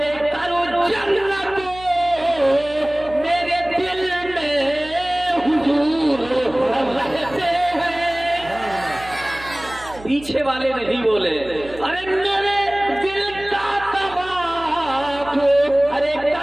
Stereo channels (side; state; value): right; noise; hum, 18 dB below the sound